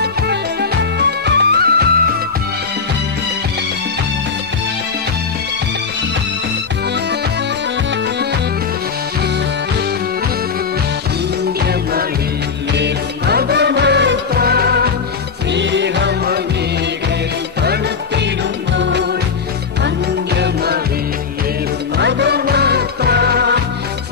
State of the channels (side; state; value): right; quieter; 5.5 dB